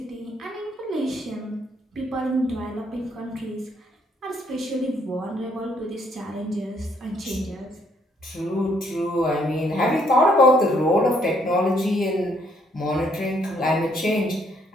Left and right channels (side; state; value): both; normal; correlation 0.69